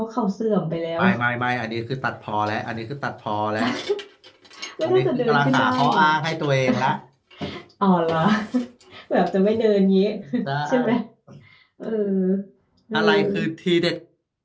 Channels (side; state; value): both; identical; correlation 1.00